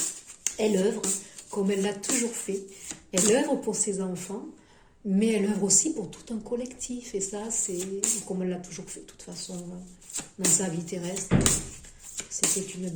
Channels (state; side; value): identical; both; correlation 1.00